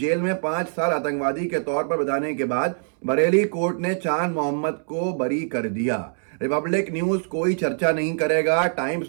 में 5 साल आतंकवादी के तौर पर बिताने के बाद बरेली कोर्ट ने चांद मोहम्मद को बरी कर दिया। रिपब्लिक न्यूज कोई चर्चा नहीं करेगा,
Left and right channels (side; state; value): left; silent; 63 dB below the other